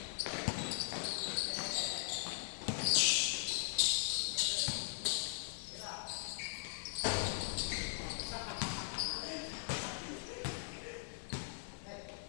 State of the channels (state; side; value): silent; right; digital silence